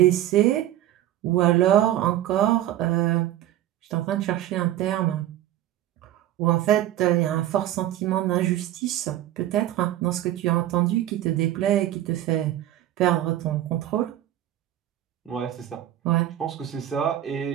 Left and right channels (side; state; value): left; quieter; 13.0 dB